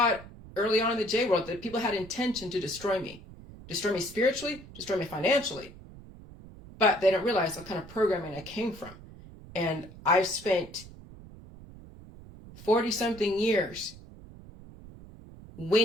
it early on in the J world that people had intention to destroy me spiritually, destroy me financially, but they don't realize what kind of programming I came from. And I've spent 40-something years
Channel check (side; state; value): right; noise; rumble, 18 dB below the sound